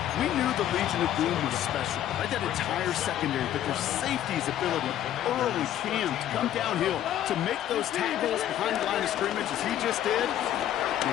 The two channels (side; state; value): right; quieter; 11.6 dB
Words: We knew the Legion of Boom was special. Right, that entire secondary, but their safety's ability early Cam to come downhill to make those tackles behind the line of scrimmage as he just did.